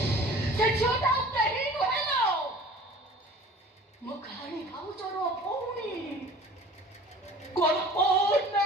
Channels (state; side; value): normal; both; correlation 0.45